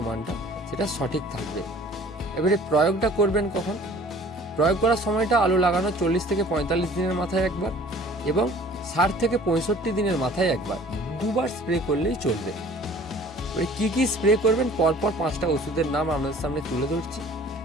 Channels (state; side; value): normal; both; correlation 0.50